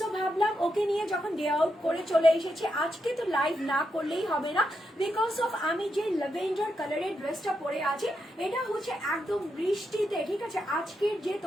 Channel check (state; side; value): normal; both; correlation 0.84